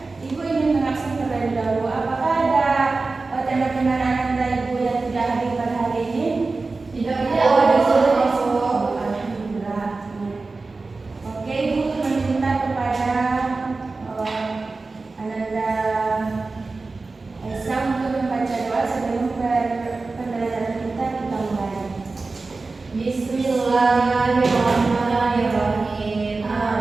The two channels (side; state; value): left; quieter; 3.7 dB